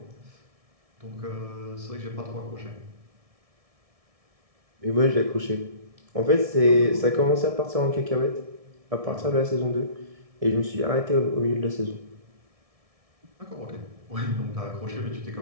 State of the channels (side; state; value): left; late; 1.7 ms